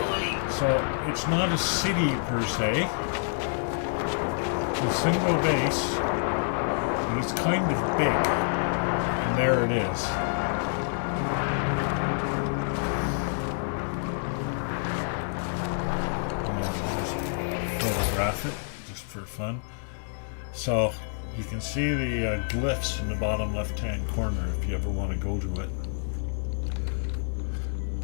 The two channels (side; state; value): right; silent; digital silence